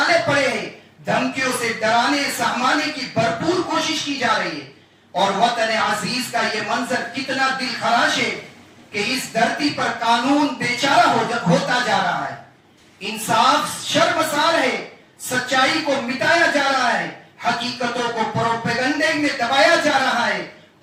پڑے ہیں. دھمکیوں سے ڈرانے سہمانے کی بھرپور کوشش کی جا رہی ہے. اور وطن عزیز کا یہ منظر کتنا دل خراش ہے کہ اس دھرتی پر قانون بیچارہ ہوتا جا رہا ہے، انصاف شرمسار ہے، سچائی کو مٹایا جا رہا ہے، حقیقتوں کو پروپیگنڈے میں دبایا جا رہا ہے.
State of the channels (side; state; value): both; identical; correlation 1.00